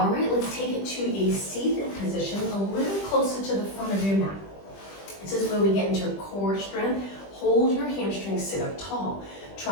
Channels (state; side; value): late; right; 20 ms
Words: right, let's take it to a seated position, a little closer to the front of your mat. This is where we get into core strength. Hold your hamstrings, sit up tall.